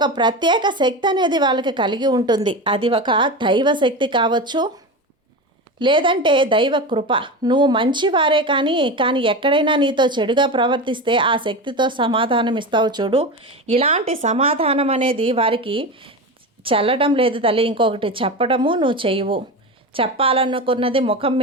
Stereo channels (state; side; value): normal; both; correlation 0.23